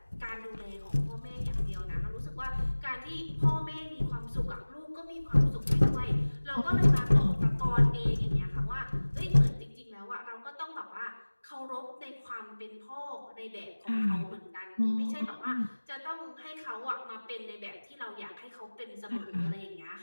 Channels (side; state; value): both; inverted; correlation -1.00